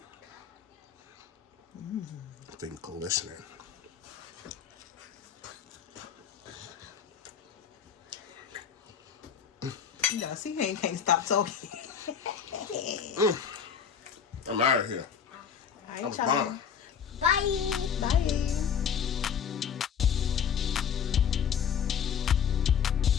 Thing glistening. Yeah, see, he can't stop talking. I'm out of here. All right, I'm y'all. gone. Bye. Bye.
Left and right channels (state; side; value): quieter; right; 7.5 dB